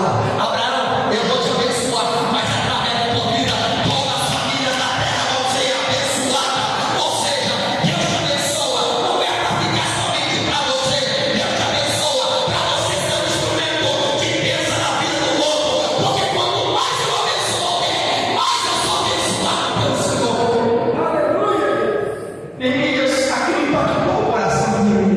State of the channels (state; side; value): identical; both; correlation 1.00